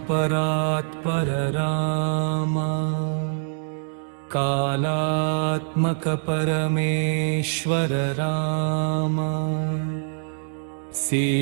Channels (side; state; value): left; silent; digital silence